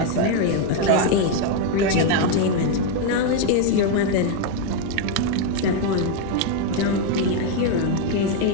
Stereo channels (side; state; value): both; different; correlation 0.01